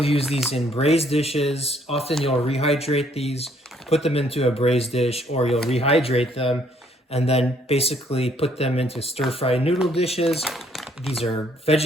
use these in braised dishes. Often you'll rehydrate these, put them into a braised dish, or you'll rehydrate them and then basically put them into stir-fried noodle dishes. These are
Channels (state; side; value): normal; both; correlation 0.65